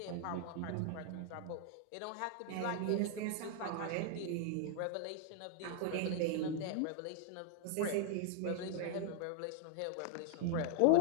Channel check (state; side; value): different; both; correlation 0.00